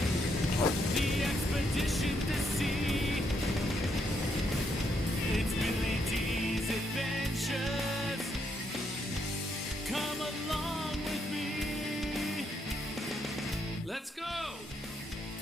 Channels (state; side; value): normal; both; correlation 0.76